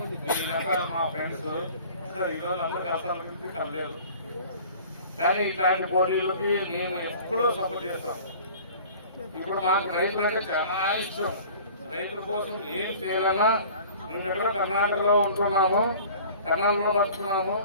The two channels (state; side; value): inverted; both; correlation -0.45